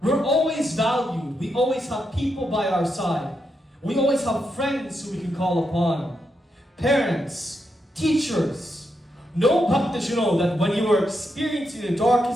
We're always valued. We always have people by our side. We always have friends who we can call upon. Parents, teachers. Know, Bhaktajano, that when you are experiencing the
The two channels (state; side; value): normal; both; correlation 0.83